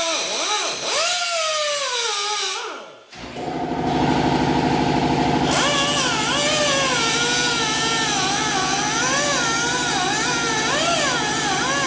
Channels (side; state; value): both; identical; correlation 1.00